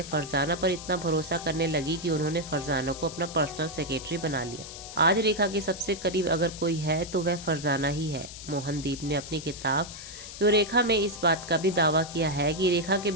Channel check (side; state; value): left; noise; hiss, 12 dB below the sound